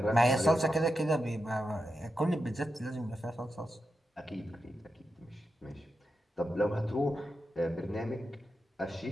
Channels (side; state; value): both; normal; correlation 0.89